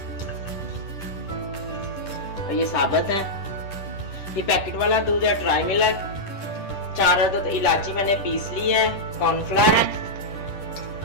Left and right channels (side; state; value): right; late; 10 ms